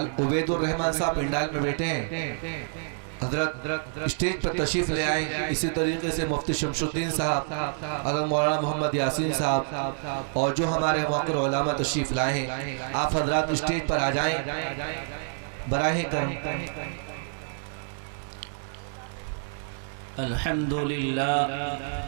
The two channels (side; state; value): left; silent; digital silence